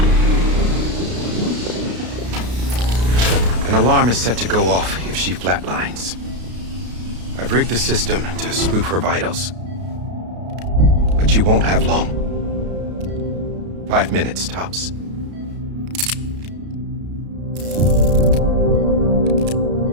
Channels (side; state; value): left; late; 33 ms